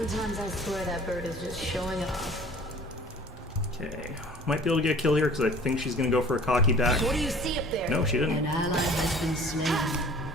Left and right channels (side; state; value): both; normal; correlation 0.48